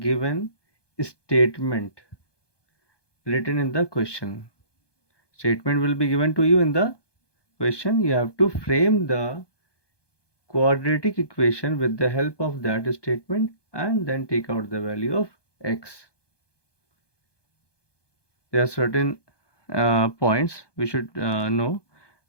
statement written in the question. Statement will be given to you in the question. You have to frame the quadratic equation with the help of that statement and then take out the value of x. There are certain points we should know.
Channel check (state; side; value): late; right; 1.2 ms